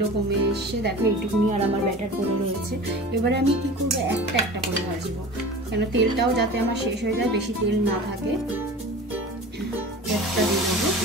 কমে এসে দেখো এইটুকুনি আর আমার ব্যাটার করে রয়েছে। এবারে আমি কি করবো, একটা একটা করে ভাজবো, কেন তেলটাও যাতে আমার শেষ হয়ে যায়, বেশি তেল না থাকে। একটা দিয়ে দেবো।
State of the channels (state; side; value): normal; both; correlation 0.36